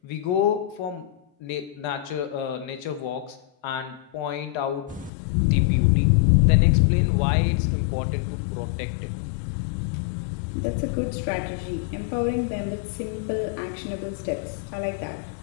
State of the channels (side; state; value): right; drops out; at 5.1 s